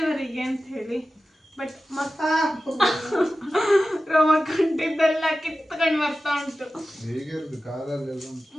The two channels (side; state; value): both; normal; correlation 0.94